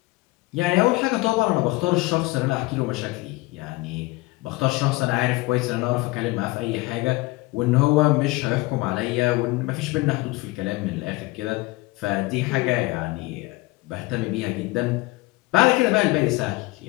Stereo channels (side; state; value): right; quieter; 21.3 dB